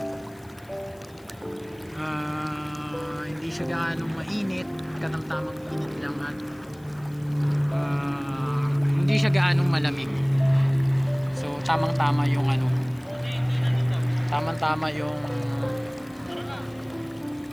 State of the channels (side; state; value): left; noise; hiss, 29 dB below the sound